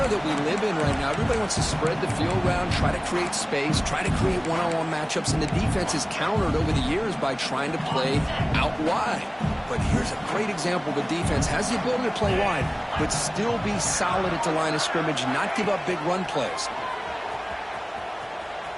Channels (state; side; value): identical; both; correlation 1.00